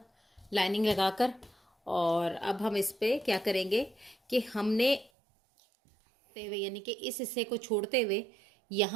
लाइनिंग लगाकर। और अब हम इस पे क्या करेंगे कि हमने यानी कि इस हिस्से को छोड़ते हुए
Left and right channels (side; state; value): left; drops out; at 5.1 s